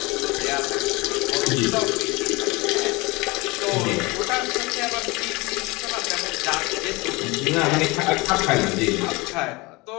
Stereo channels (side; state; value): right; quieter; 24.3 dB